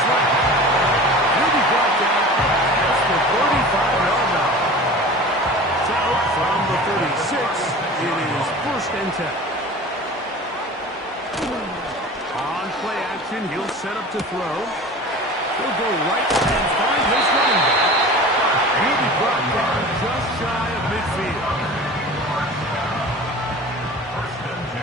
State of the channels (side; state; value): both; normal; correlation 0.38